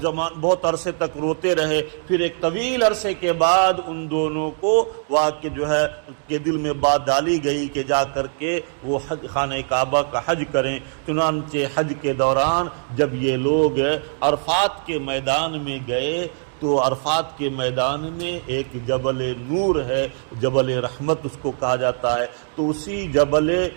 عرصے تک روتے رہے۔ پھر ایک طویل عرصے کے بعد ان دونوں کو واقع جو ہے کے دل میں بات ڈالی گئی کہ جا کر کے وہ خانہ کعبہ کا حج کریں۔ چنانچہ حج کے دوران جب یہ لوگ عرفات کے میدان میں گئے تو عرفات کے میدان میں ایک جبل نور ہے، جبل رحمت اس کو کہا جاتا ہے، تو اسی جبل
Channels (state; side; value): silent; left; 64 dB below the other